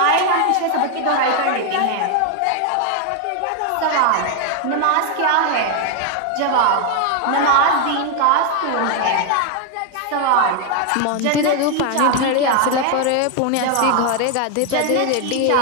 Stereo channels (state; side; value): different; both; correlation 0.01